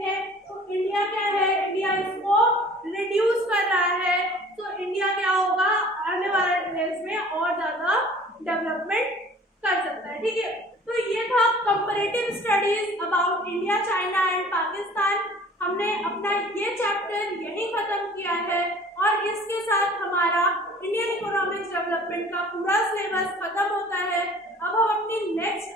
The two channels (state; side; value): normal; both; correlation 0.49